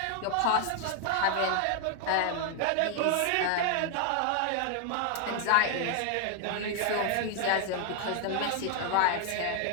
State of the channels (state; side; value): different; both; correlation 0.00